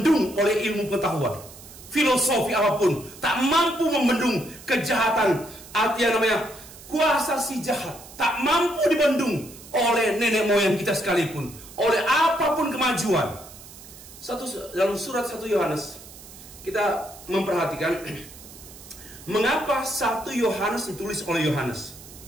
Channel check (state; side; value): noise; right; hiss, 18 dB below the sound